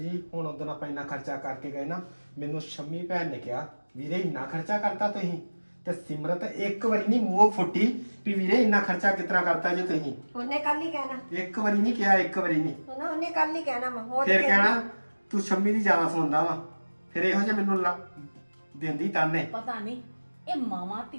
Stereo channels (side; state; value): both; inverted; correlation -1.00